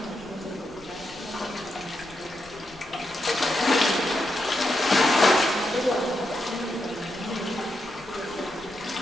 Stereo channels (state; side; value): noise; left; rumble, 23 dB below the sound